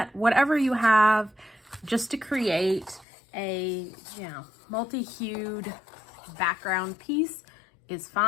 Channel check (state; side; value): drops out; right; at 3.1 s